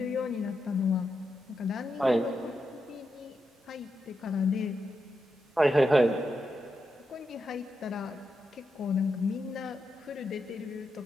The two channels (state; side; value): normal; both; correlation 0.86